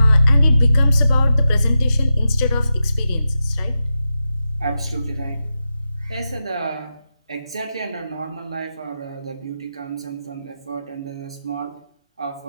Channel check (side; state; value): both; inverted; correlation -0.91